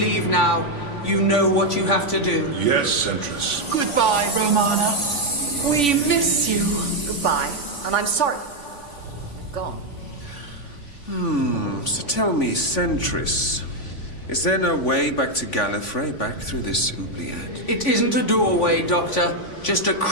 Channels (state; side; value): late; right; 3.5 ms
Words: now. You know what you have to do. Yes, Centris. Goodbye, Romana. We miss you. Goodbye. And I'm sorry. Gone. So tell me, Centris, is there no way back to Gallifrey, back through this oubliette? It isn't a doorway, Doctor. Just a